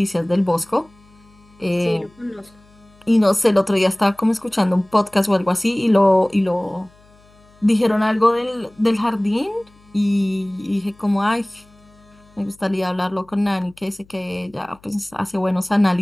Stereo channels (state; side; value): noise; left; hum, 29 dB below the sound